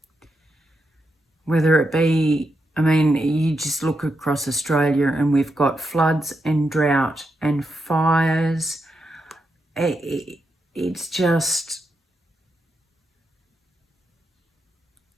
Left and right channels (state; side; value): normal; both; correlation 0.84